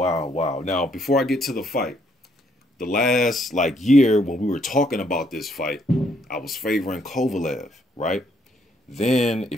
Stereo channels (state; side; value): normal; both; correlation 0.70